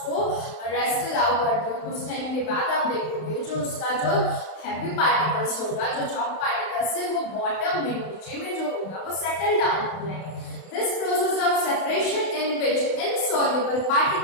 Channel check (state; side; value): late; right; 31 ms